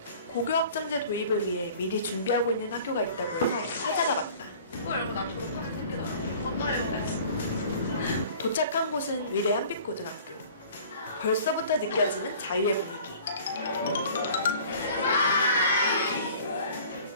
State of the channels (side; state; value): both; inverted; correlation -0.48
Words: 고교학점제 도입을 위해 미리 준비하고 있는 학교가 있다고 해서 찾아가 봤다. 그거 알고 나 졸업하게 생기더라. 맞아요. 도착한 곳은 위례 한빛고등학교. 벌써부터 느껴지는 자유의 분위기.